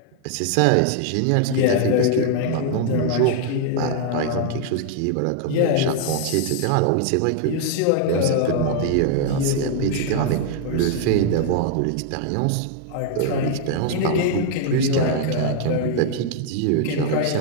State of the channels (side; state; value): both; different; correlation 0.00